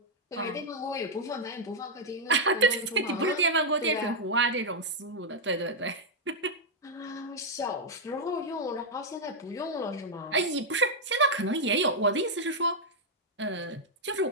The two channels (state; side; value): normal; both; correlation -0.03